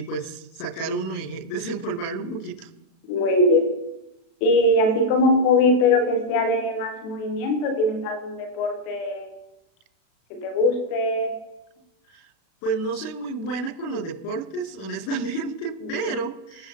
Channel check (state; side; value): late; right; 36 ms